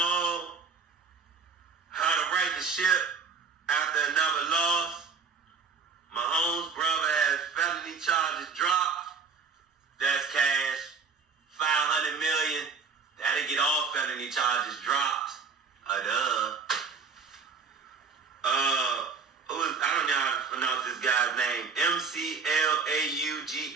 how to right the ship after another loss. Mahomes' brother has felony charges dropped. That's cash. $500 million. That'll get all felony charges dropped. I don't know how to pronounce this guy's name.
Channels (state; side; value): quieter; left; 5.4 dB